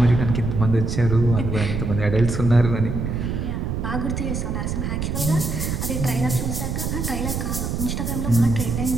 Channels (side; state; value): right; noise; rumble, 2 dB below the sound